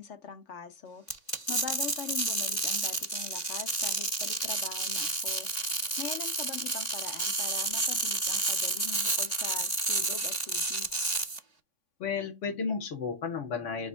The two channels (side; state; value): right; late; 3.5 ms